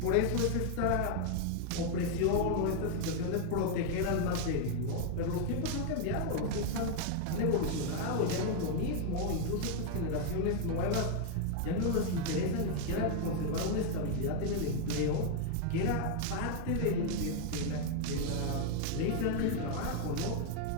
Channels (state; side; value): different; both; correlation 0.00